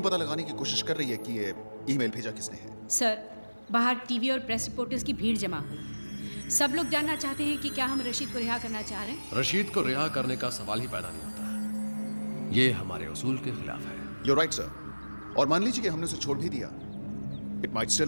पता लगाने की कोशिश कर रही है कि ये ईमेल भेजा किसने है। सर, बाहर टीवी और प्रेस रिपोर्टर्स की भीड़ जमा हुई। सब लोग जानना चाहते हैं कि क्या हम रशीद को रिहा करना चाह रहे हैं। रशीद को रिहा करने का सवाल ही पैदा नहीं होता। ये हमारे उसूल के खिलाफ है। You're right, sir. और मान लीजिए कि हमने उसे छोड़ भी दिया, It might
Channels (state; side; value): inverted; both; correlation -1.00